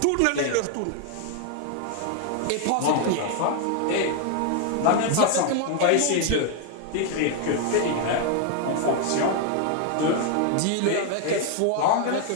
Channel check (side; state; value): both; different; correlation 0.00